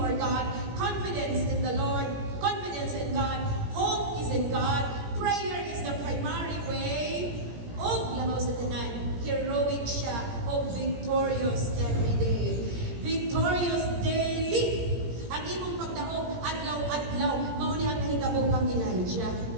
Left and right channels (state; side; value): late; left; 17 ms